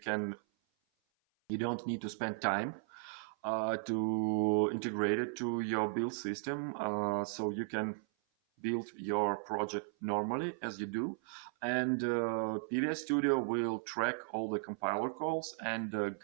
don't need to spend time to integrate it to your build system. So you can build your project normally as you do, and PVS Studio will track all the compiler calls and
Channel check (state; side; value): silent; left; 54 dB below the other